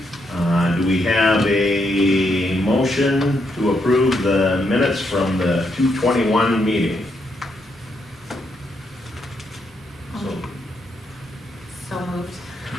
Do we have a motion to approve the minutes from the 2/21 meeting? So moved.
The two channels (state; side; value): normal; both; correlation 0.78